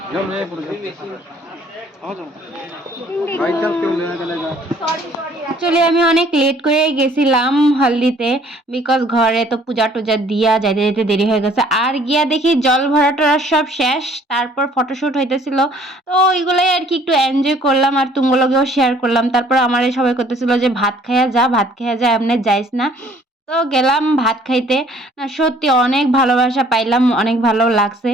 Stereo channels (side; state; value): both; normal; correlation 0.58